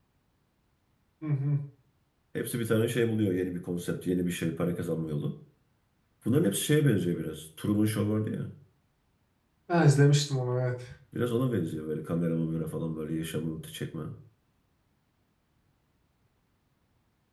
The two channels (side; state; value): both; identical; correlation 1.00